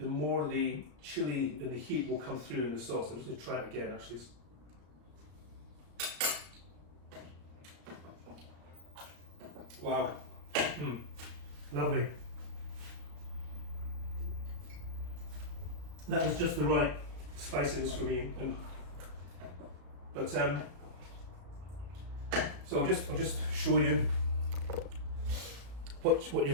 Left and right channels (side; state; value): left; late; 34 ms